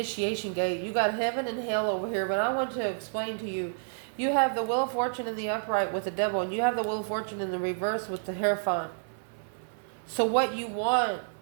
gate. You got heaven and hell over here, but I want to explain to you. You have the Wheel of Fortune in the upright with the devil, and you have the Wheel of Fortune in the reverse with the Hierophant. So what you want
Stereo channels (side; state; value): left; silent; 58 dB below the other